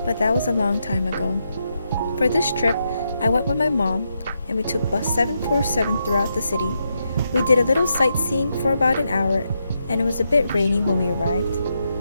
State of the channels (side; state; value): both; inverted; correlation -0.83